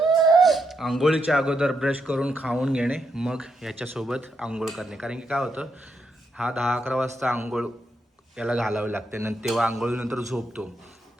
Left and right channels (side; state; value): both; normal; correlation 0.81